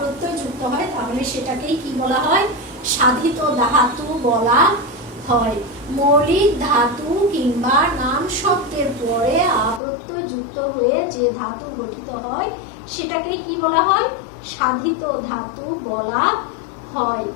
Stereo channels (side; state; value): right; drops out; at 9.8 s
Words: যুক্ত হয় তাহলে সেটাকেই কি বলা হয়? সাধিত ধাতু বলা হয়। মৌলিক ধাতু কিংবা নাম শব্দের পরে আ প্রত্যয় যুক্ত হয়ে যে ধাতু গঠিত হয় সেটাকেই কি বলা হয়? সাধিত ধাতু বলা হয়।